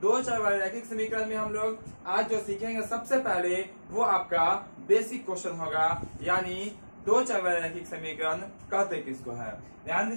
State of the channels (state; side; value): inverted; both; correlation -1.00